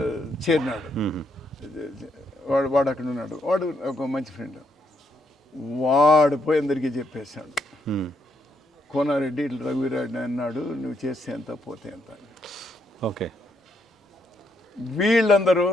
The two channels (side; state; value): both; normal; correlation 0.76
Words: చేరినాడు. వాడు అక్కడ ఉన్నాడు. వాడు ఒక మంచి ఫ్రెండ్. వాడు పోయి అందరికీ చెప్పేశాడు, కోనారెడ్డి ఇట్లా రఘువీరారెడ్డి అన్నాడు, నువ్వు చేస్తే ఎంత పోతే ఎంత. ఓకే. వీళ్ళందరూ